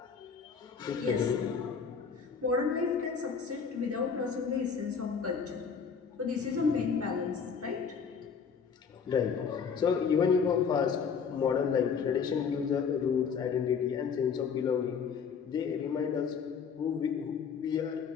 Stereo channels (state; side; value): quieter; right; 6.2 dB